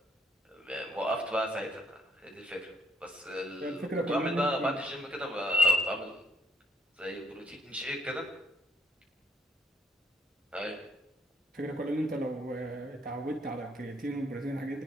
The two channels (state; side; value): normal; both; correlation 0.67